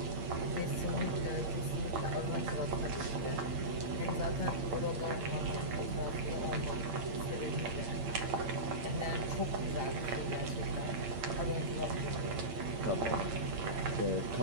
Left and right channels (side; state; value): left; late; 8.8 ms